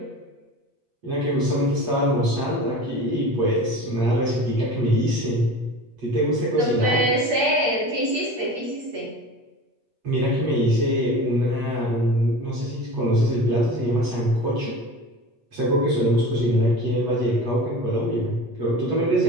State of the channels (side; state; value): left; late; 8.4 ms